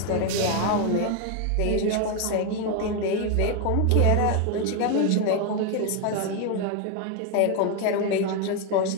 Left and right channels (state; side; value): different; both; correlation 0.01